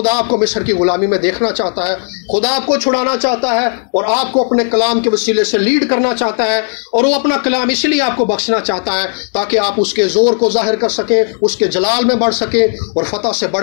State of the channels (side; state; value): right; silent; digital silence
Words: آپ کو مصر کی غلامی میں دیکھنا چاہتا ہے۔ خدا آپ کو چھڑانا چاہتا ہے اور آپ کو اپنے کلام کے وسیلے سے لیڈ کرنا چاہتا ہے، اور وہ اپنا کلام اس لیے آپ کو بخشنا چاہتا ہے تاکہ آپ اس کے زور کو ظاہر کر سکیں، اس کے جلال میں بڑھ سکیں، اور فتح سے